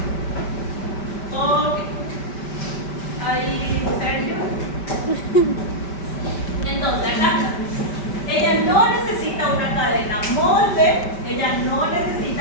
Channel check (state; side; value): late; right; 5.1 ms